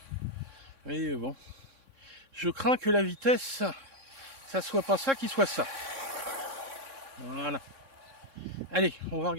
mais bon, je crains que la vitesse, ça soit pas ça qui soit ça. Voilà. Allez, on va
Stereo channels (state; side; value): late; left; 3.7 ms